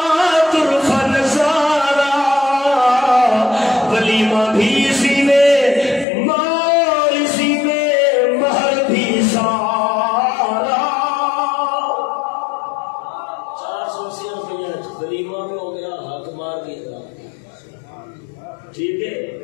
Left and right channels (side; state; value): right; drops out; at 6.1 s